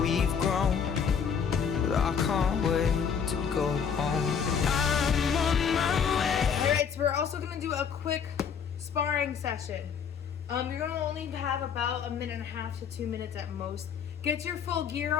grown, but I can't wait to go home. I'm on my way. All right, so we're also gonna do a quick sparring session. You're gonna only have about 1.5 to 2 minutes at most. Get your full gear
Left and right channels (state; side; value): quieter; right; 7.0 dB